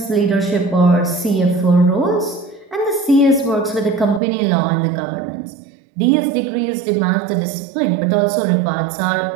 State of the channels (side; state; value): left; drops out; at 4.2 s